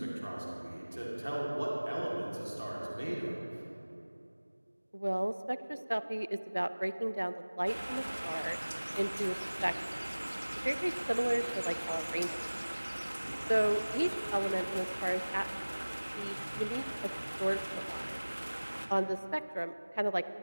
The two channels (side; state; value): both; inverted; correlation -1.00